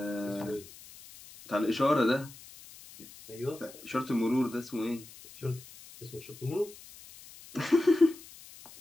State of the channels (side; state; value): left; noise; hiss, 19 dB below the sound